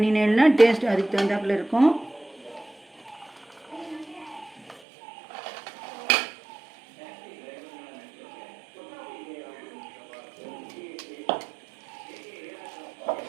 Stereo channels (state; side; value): drops out; left; at 4.8 s